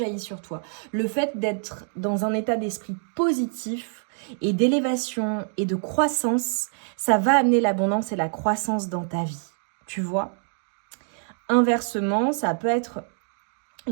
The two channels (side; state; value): left; silent; 60 dB below the other